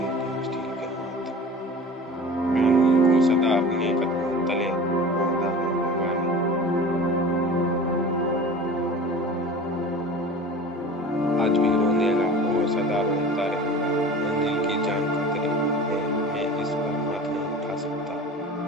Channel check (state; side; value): normal; both; correlation 0.38